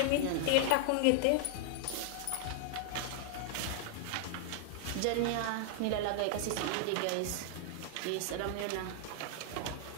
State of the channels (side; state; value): both; different; correlation -0.01